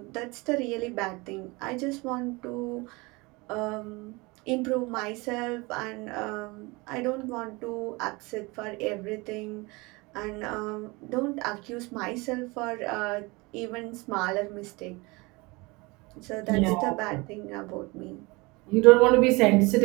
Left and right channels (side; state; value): left; quieter; 25.1 dB